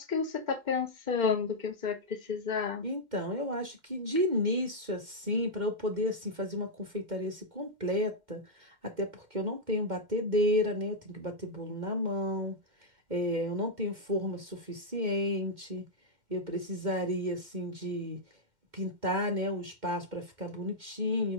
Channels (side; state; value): left; late; 2.1 ms